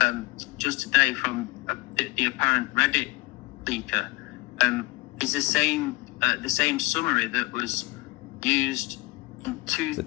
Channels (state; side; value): quieter; right; 22.7 dB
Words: just today from the apparent Reddit leaker is the same the same summary that was used in